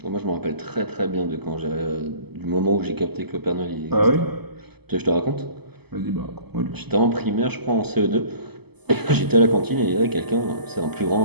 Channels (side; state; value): left; late; 0.98 ms